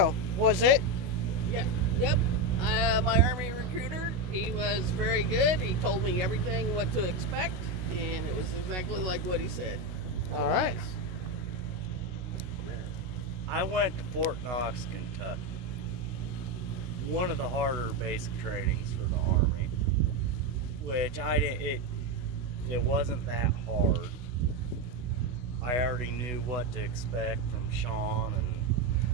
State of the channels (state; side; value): late; left; 16 ms